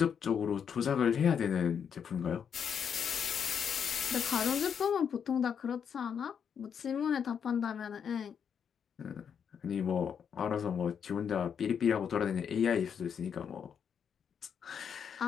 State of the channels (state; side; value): quieter; right; 7.5 dB